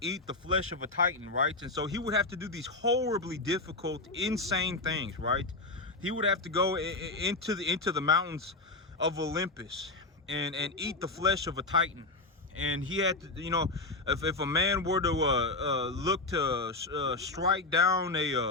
the flesh of a titan, right? And so he would have to do these horribly difficult, insane things, right? He would have to go into the mountains of Olympus and eat the flesh of a titan. And he had to, you know, if a man were to look to strike down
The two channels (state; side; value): quieter; right; 3.2 dB